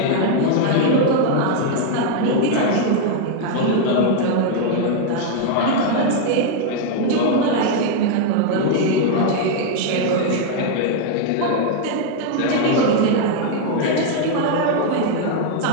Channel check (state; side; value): different; both; correlation 0.00